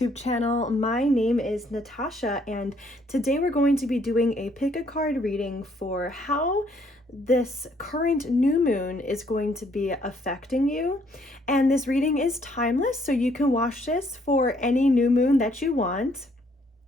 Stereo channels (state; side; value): normal; both; correlation 0.67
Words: channel. My name is Natasha and today we're going to be doing a pick a card reading for how this current new moon is going to be affecting you. And this reading is timeless, so you can watch this for any new moon that you want.